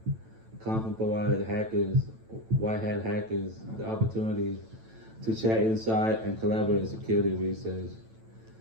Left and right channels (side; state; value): left; late; 9.0 ms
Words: conference provide hackers, white hat hackers, the opportunity to chat inside and collaborate in security research.